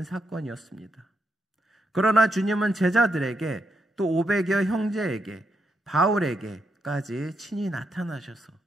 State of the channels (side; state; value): both; normal; correlation 0.81